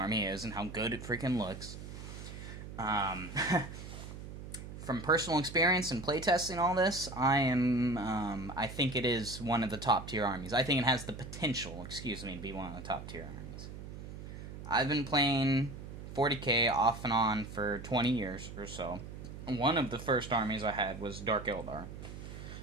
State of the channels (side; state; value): right; noise; hum, 11 dB below the sound